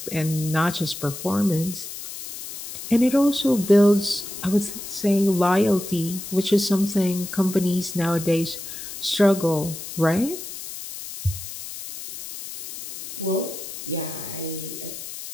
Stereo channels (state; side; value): noise; left; hiss, 10 dB below the sound